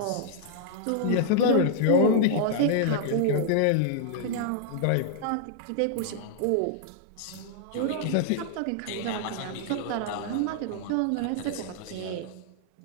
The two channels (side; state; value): both; different; correlation -0.01